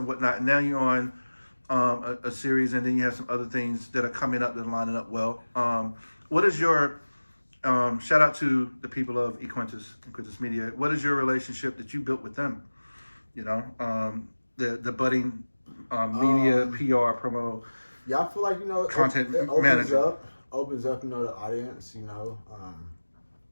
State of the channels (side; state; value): both; inverted; correlation -1.00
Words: whatnot. And now you're on a series, and then you have some other things that are coming up that are lining up well. What is your shout out to the people of Equentis Media. What is your relationship that you built with them You know, the budding media, PR, promo. Yeah, I feel like, you know, Content it manager. opens up, you know, the audience, you know,